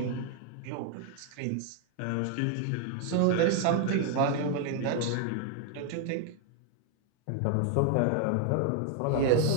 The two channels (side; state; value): both; different; correlation 0.00